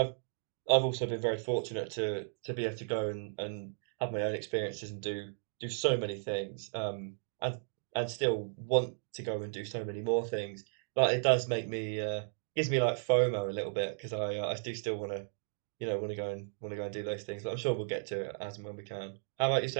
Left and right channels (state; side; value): silent; left; digital silence